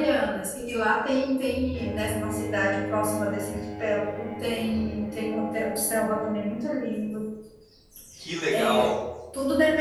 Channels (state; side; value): identical; both; correlation 1.00